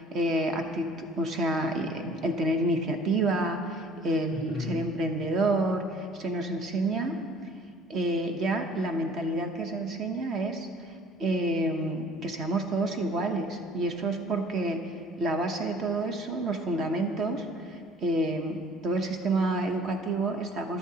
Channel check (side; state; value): both; normal; correlation 0.53